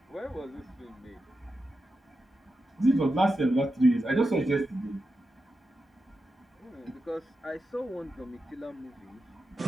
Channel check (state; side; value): normal; both; correlation 0.89